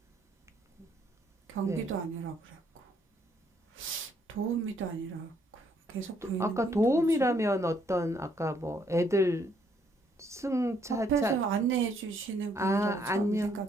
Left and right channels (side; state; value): both; normal; correlation 0.69